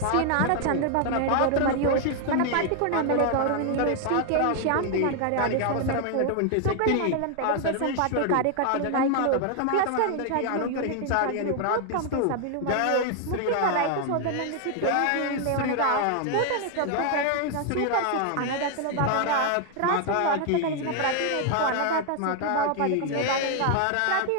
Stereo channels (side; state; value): both; different; correlation 0.00